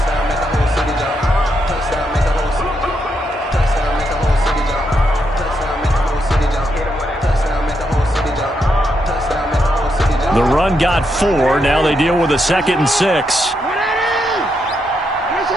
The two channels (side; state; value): both; normal; correlation 0.80